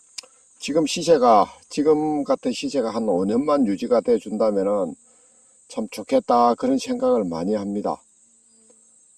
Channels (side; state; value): both; identical; correlation 1.00